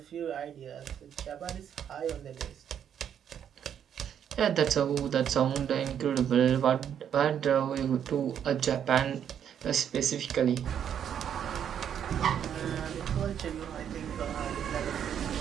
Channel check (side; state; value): left; quieter; 8.9 dB